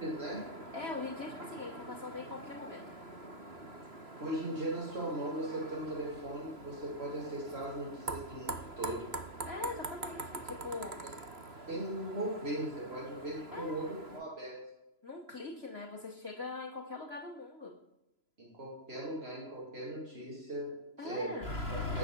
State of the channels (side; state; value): left; late; 3.0 ms